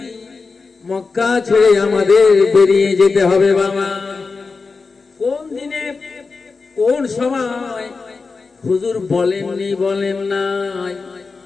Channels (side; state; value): right; quieter; 4.4 dB